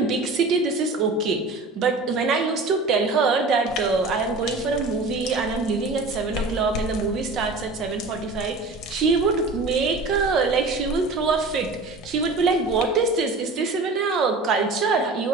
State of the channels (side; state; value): left; quieter; 3.4 dB